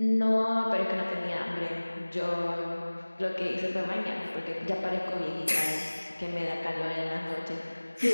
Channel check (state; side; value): inverted; both; correlation -1.00